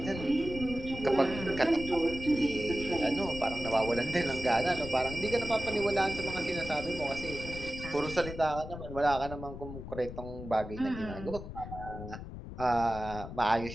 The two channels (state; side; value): noise; left; rumble, 10 dB below the sound